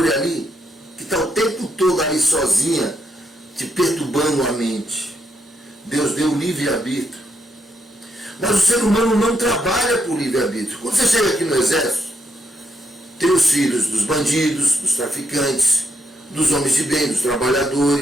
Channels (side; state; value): both; normal; correlation 0.79